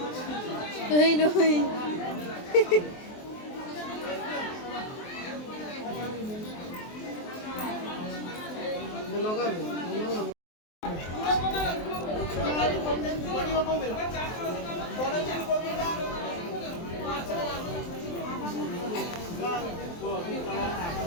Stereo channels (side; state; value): right; late; 23 ms